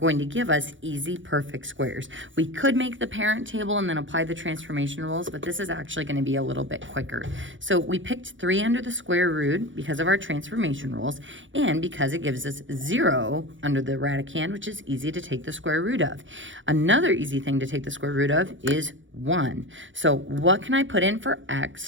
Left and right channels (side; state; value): left; late; 0.56 ms